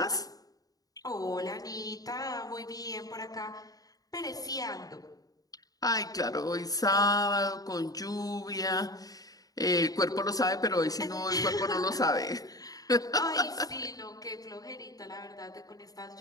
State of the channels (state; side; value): late; right; 0.18 ms